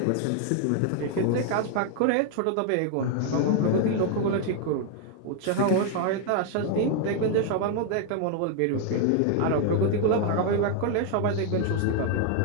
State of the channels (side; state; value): both; different; correlation 0.00